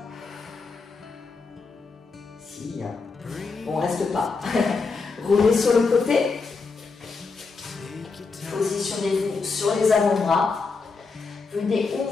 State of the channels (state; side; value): quieter; right; 4.5 dB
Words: Si, hein. Bon, reste pas. Roulez sur le côté. Positionnez-vous sur les avant-bras. Venez